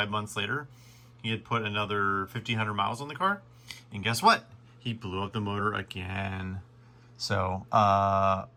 months later. He had put another 1,500 miles on the car, and guess what? He blew up the motor again. So I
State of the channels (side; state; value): both; identical; correlation 1.00